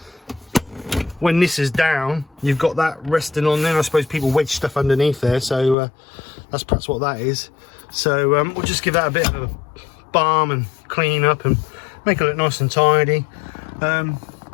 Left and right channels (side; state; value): right; drops out; at 5.8 s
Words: when this is down, you've got that resting on there. I suppose people wedge stuff underneath there, so that's perhaps what that is. So we'll just give that a bit of a balm and clean up and make it look nice and tidy.